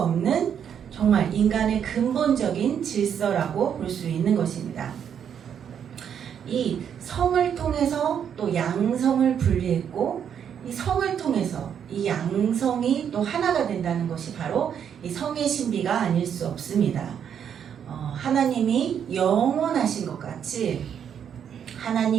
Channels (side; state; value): left; quieter; 8.3 dB